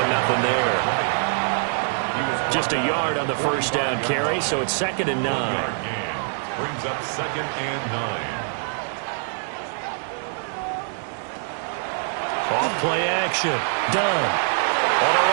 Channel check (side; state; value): left; silent; digital silence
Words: nothing there. Just a yard on the first down carry, so it's 2nd and 9. Brings up 2nd and 9. Off play action. Done. On the